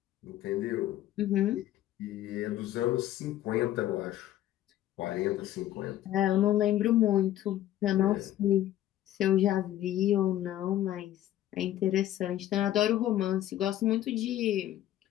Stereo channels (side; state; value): right; quieter; 13.0 dB